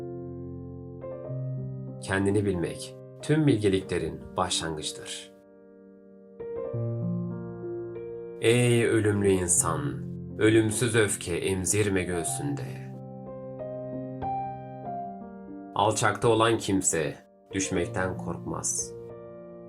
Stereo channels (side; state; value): both; identical; correlation 1.00